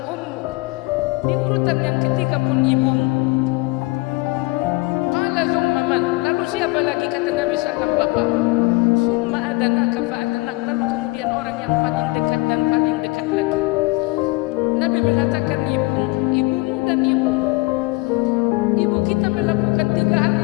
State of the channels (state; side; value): quieter; right; 24.1 dB